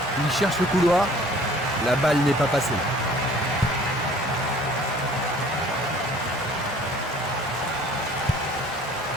Il cherche le couloir. La balle n'est pas passée.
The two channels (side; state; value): both; normal; correlation 0.52